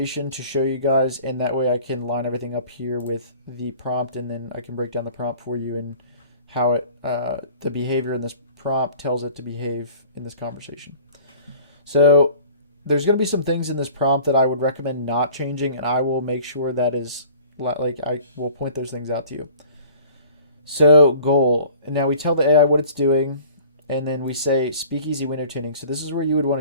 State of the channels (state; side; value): inverted; both; correlation -0.48